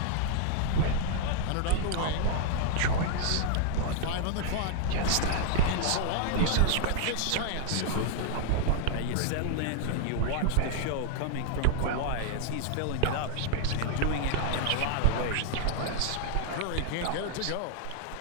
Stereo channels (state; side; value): different; both; correlation 0.00